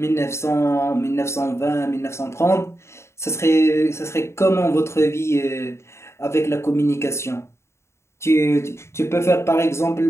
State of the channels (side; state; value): right; late; 0.13 ms